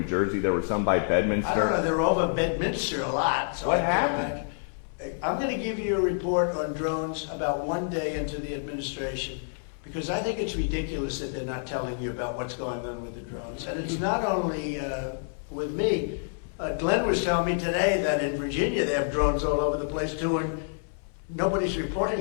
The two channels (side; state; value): right; silent; 59 dB below the other